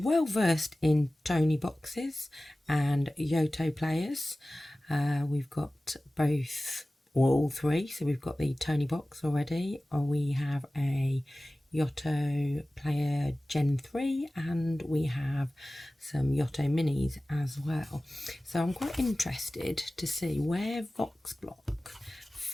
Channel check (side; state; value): both; normal; correlation 0.97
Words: versed in Tony boxes and Yoto players. We've got both, or all three. So we've got the Tony box already, or we have a Yoto player Gen 3, and we have some Yoto minis as well. So I'm quite interested to see where Voxblock